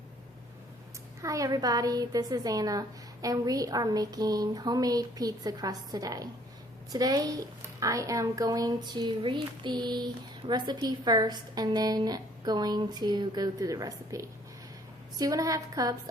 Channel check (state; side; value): normal; both; correlation 0.60